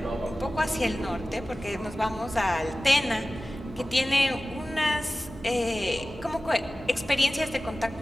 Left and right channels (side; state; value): both; normal; correlation 0.96